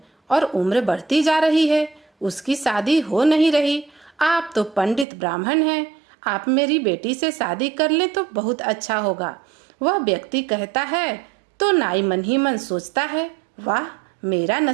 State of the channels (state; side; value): drops out; left; at 5.1 s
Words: और उम्र बढ़ती जा रही है, उसकी शादी हो नहीं रही। आप तो पंडित ब्राह्मण हैं, आप मेरी बेटी से शादी कर लें तो बहुत अच्छा होगा। वह व्यक्ति कहता है तो नाई मन ही मन सोचता है, वाह मेरा